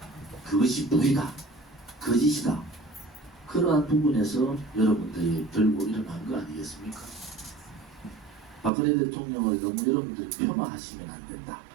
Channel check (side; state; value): left; drops out; at 8.7 s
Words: 그것이 불이다, 거짓이다, 그러한 부분에서 여러분들이 들고 일어난 거 아니겠습니까? 박근혜 대통령을 너무 여러분들이 폄하하시면 안 된다.